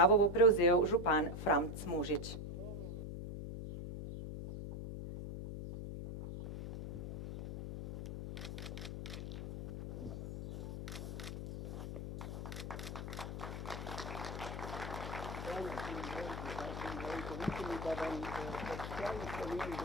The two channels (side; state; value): left; noise; hum, 6 dB below the sound